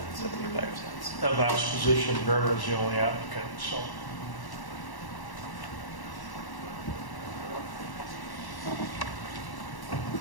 75 cents. that last position, Vern was the only applicant. So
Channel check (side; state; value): right; late; 1.1 ms